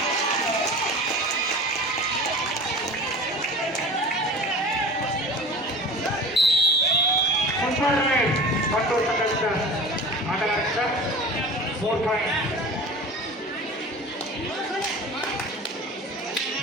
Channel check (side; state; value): both; normal; correlation 0.36